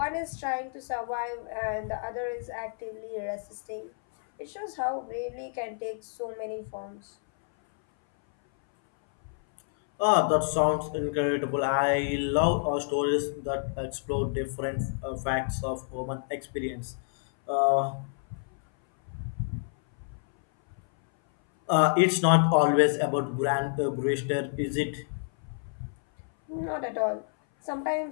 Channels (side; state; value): right; silent; 58 dB below the other